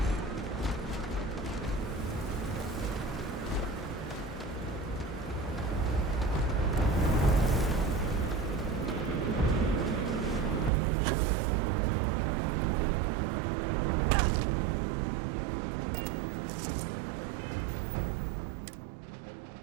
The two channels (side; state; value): left; drops out; at 10.7 s